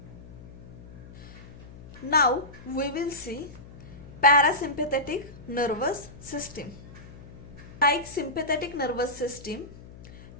Now we will see parasympathetic nervous system. Like sympathetic nervous system,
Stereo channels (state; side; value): noise; left; hum, 17 dB below the sound